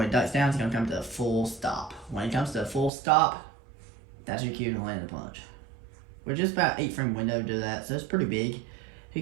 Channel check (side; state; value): left; drops out; at 2.9 s